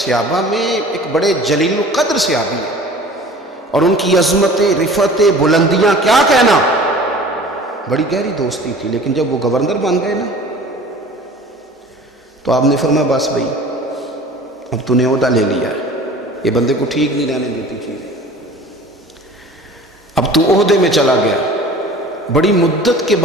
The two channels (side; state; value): both; normal; correlation 0.44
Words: میں ایک بڑے جلیل القدر صحابی ہیں، اور ان کی عظمتیں، رفعتیں، بلندیاں کیا کہنا، بڑی گہری دوستی تھی۔ لیکن جب وہ گورنر بن گئے نا تو آپ نے فرمایا بس بھائی اب تو نے عہدہ لے لیا ہے، یہ بندے کو ٹھیک نہیں رہنے دیتی چیزیں، اب تو عہدے میں چلا گیا۔ بڑی مدت کے